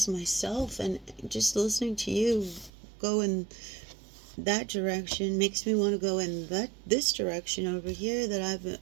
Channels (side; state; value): left; drops out; at 2.7 s